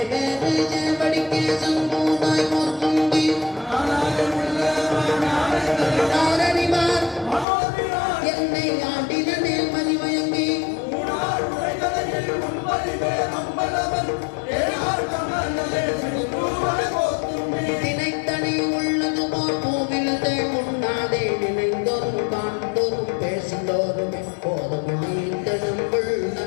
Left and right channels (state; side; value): drops out; right; at 7.5 s